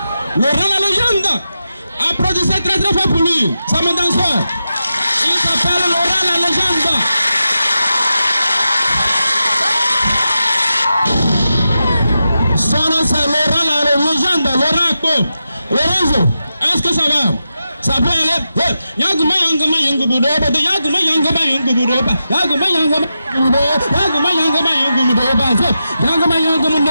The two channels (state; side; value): inverted; both; correlation -0.89